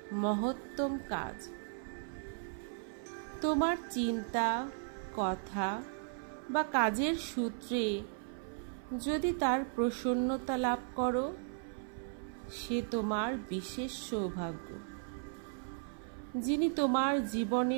মহত্তম কাজ। তোমার চিন্তা, কথা বা কাজের সূত্রে যদি তার প্রসন্নতা লাভ করো, সে তোমার বিশেষ সৌভাগ্য। যিনি তোমার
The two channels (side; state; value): left; silent; 54 dB below the other